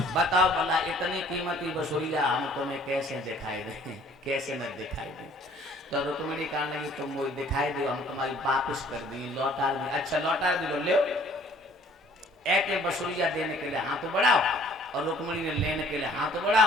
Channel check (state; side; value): normal; both; correlation 0.56